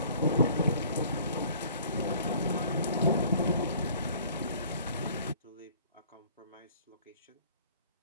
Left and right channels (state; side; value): inverted; both; correlation -0.52